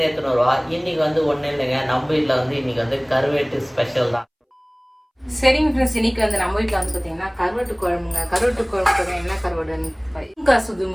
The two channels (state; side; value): identical; both; correlation 1.00